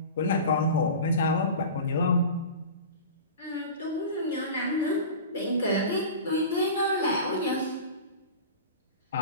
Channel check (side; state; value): both; inverted; correlation -0.33